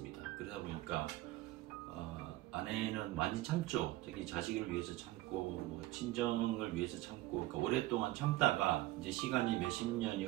그러다 보니까 아내는 많이 참죠. 특히 자식을 위해서 참고 친정을 위해서 참고, 그러니까 오랫동안 참다가 이제 시간이 몇십 년이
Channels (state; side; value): quieter; left; 17.4 dB